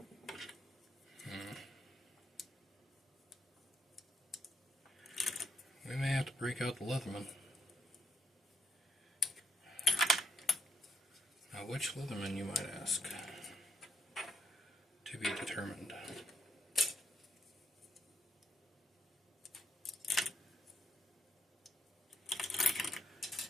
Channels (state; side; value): normal; both; correlation 0.77